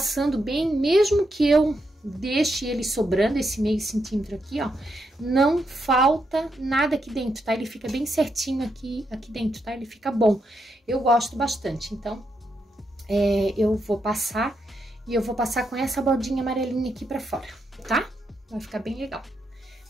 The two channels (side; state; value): both; normal; correlation 0.82